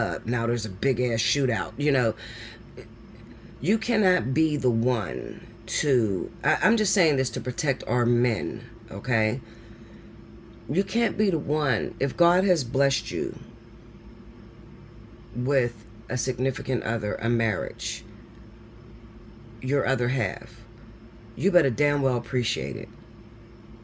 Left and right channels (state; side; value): identical; both; correlation 1.00